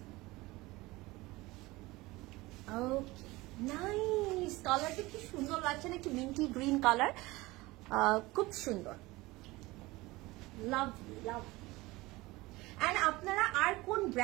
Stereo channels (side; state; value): left; quieter; 20.8 dB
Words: ওকে, নাইস। কালারটা কি সুন্দর লাগছে না? একটু মিন্টি গ্রিন কালার, খুব সুন্দর, লাভলি লাভ। এন্ড আপনারা আর কোন